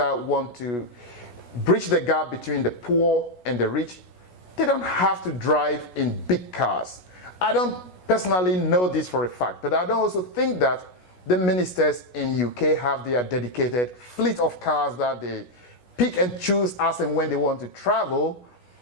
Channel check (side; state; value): right; late; 16 ms